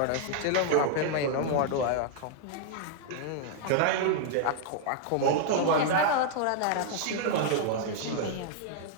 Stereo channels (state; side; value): different; both; correlation -0.01